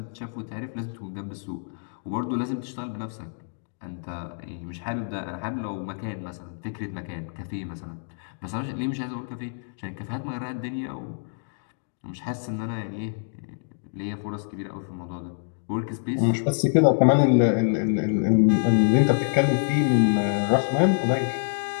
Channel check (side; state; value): right; silent; digital silence